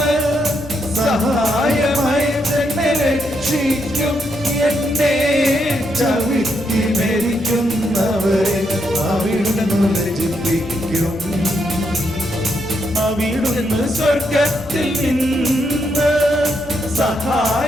സഹായമായി എന്നെ രക്ഷിക്കും, എന്നെ ചവിട്ടി മരിക്കുന്നവരെ അവിടുന്ന് ലജ്ജിപ്പിക്കും. അവിടുന്ന് സ്വർഗത്തിൽ നിന്ന്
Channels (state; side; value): normal; both; correlation 0.79